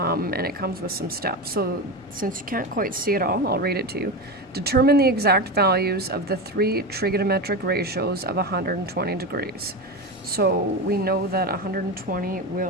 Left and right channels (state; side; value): normal; both; correlation 0.20